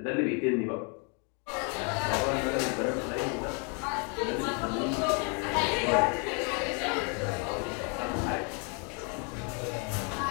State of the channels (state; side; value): quieter; right; 37.0 dB